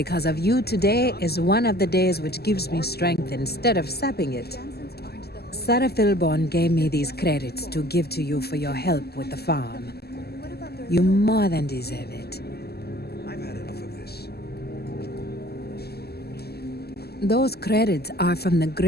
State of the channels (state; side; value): late; right; 0.46 ms